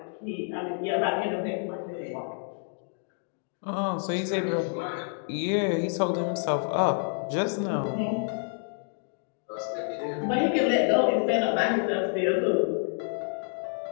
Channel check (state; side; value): silent; right; 59 dB below the other